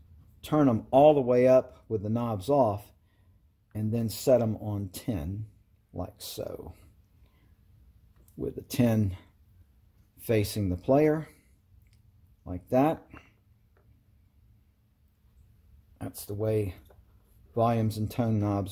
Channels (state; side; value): identical; both; correlation 1.00